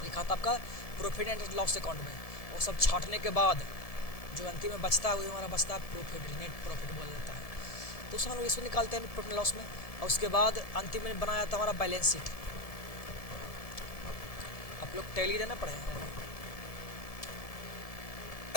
आपका प्रॉफिट एंड लॉस अकाउंट में। वो सब छाटने के बाद जो अंतिम में बचता है वो हमारा बचता है प्रॉफिट, नेट प्रॉफिट बोला जाता है। तो उस हम लोग इसमें निकालते हैं प्रॉफिट लॉस में। और उसके बाद अंतिम में बनाया जाता है हमारा बैलेंस शीट। आप लोग टैली देना पढ़े हैं,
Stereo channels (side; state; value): right; late; 1.7 ms